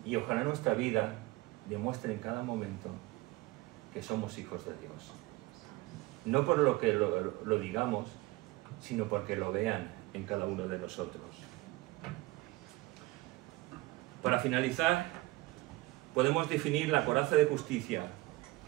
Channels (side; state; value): left; quieter; 20.7 dB